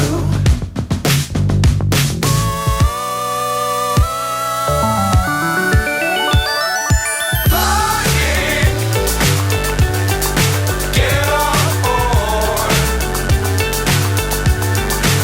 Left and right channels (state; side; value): identical; both; correlation 1.00